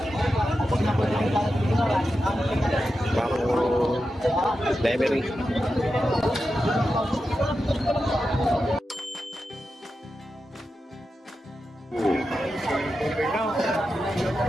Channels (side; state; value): both; normal; correlation 0.90